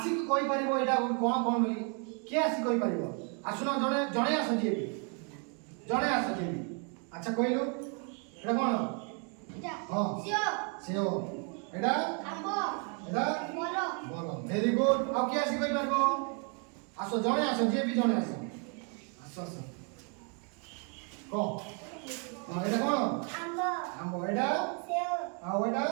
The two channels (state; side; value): quieter; left; 38.3 dB